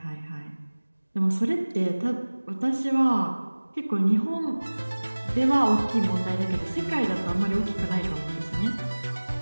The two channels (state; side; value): inverted; both; correlation -1.00